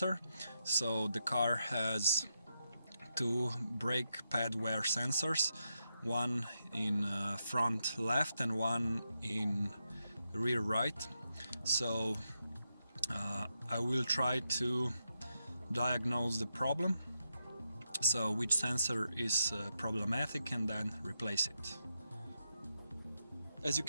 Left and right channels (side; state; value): both; inverted; correlation -0.85